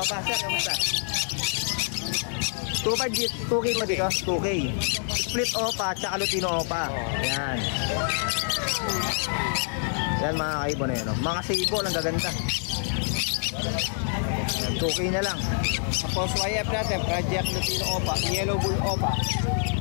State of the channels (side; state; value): right; silent; 61 dB below the other